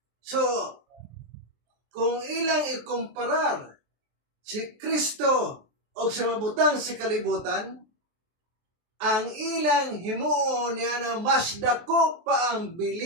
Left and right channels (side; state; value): left; late; 23 ms